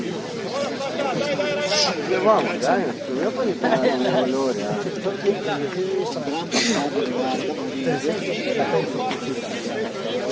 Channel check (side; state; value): both; identical; correlation 1.00